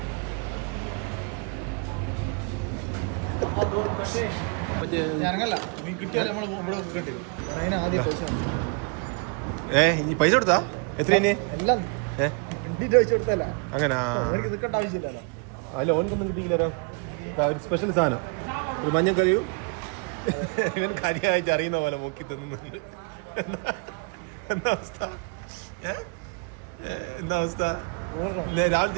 ഇനി പൈസ കൊടുത്താ എത്ര? അങ്ങനെ അല്ല, ഓനക്കൊന്നും കിട്ടിയില്ല. ഒരു സ്പെഷ്യൽ സാധനം, ഒരു മഞ്ഞക്കറിയും ഇവൻ കാര്യമായിട്ട് അറിയുന്ന പോലെ മുക്കി തന്നുന്നുണ്ട്. എന്താ അവസ്ഥ? രാവിലെ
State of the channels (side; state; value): left; quieter; 34.3 dB